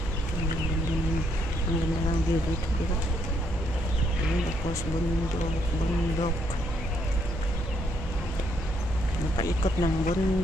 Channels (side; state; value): right; noise; hum, 7 dB below the sound